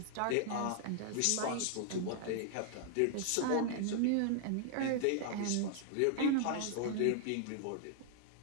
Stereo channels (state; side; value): different; both; correlation 0.00